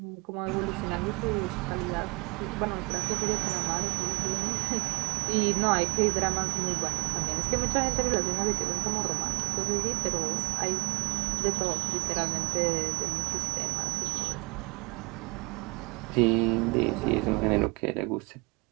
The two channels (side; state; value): left; quieter; 26.1 dB